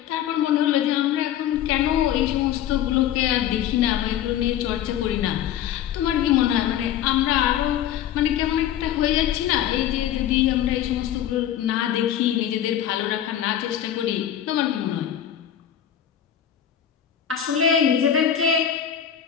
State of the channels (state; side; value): quieter; right; 10.4 dB